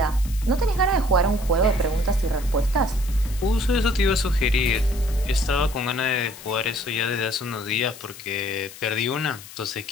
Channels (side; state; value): left; noise; hiss, 16 dB below the sound